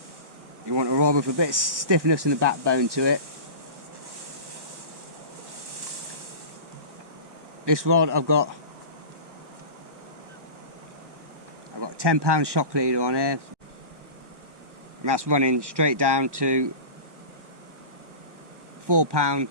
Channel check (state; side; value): late; left; 1.0 ms